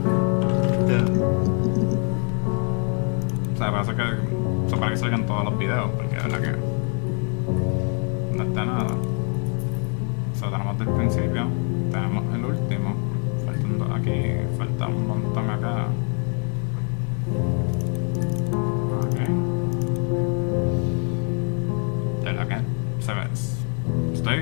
O sea, parece que. Eso para que salgan todos los videos, porque de verdad que. No está nada. O sea, tenemos del principio, tenemos el último, faltando aquí, falta un montón acá. Ok. De verdad que se ve.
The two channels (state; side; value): quieter; right; 39.8 dB